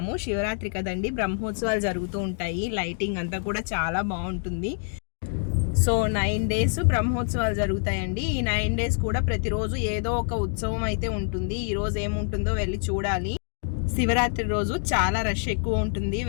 శివరాత్రి కదండి, బ్రహ్మోత్సవాలు జరుగుతూ ఉంటాయి. లైటింగ్ అంతా కూడా చాలా బాగుంటుంది. సో 9 డేస్ బ్రహ్మోత్సవాలు జరుగుతాయండి. ఈ 9 డేస్ కూడా ప్రతిరోజు ఏదో ఒక ఉత్సవం అయితే ఉంటుంది. ఈరోజు ఏముంటుందో వెళ్ళి చూడాలి. శివరాత్రి రోజు చాలా రష్ ఎక్కువ ఉంటుంది.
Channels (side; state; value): right; silent; 61 dB below the other